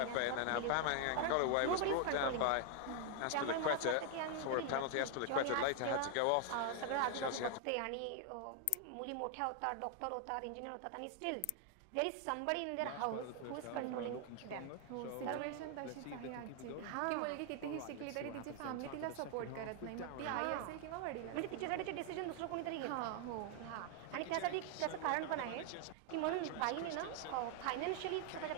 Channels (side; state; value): both; different; correlation 0.00